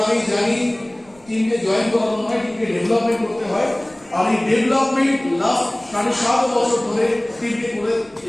আমি জানি টিমকে জয়েন করানো হয়, টিমকে ডেভেলপমেন্ট করতে হয়। আর এই ডেভেলপমেন্ট লাস্ট 7.5 বছর ধরে টিমকে করে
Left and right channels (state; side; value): noise; right; rumble, 29 dB below the sound